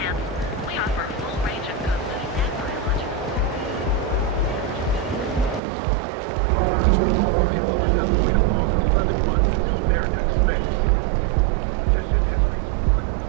Don't make me jump.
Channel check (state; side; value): drops out; left; at 5.6 s